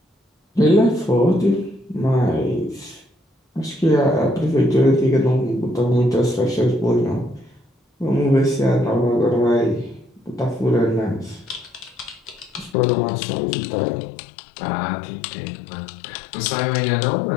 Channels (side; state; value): right; drops out; at 12.8 s